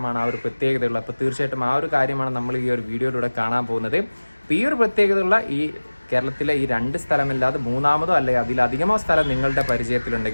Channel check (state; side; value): inverted; both; correlation -1.00